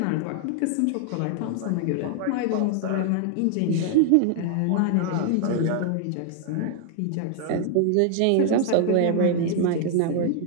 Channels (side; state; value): both; different; correlation 0.00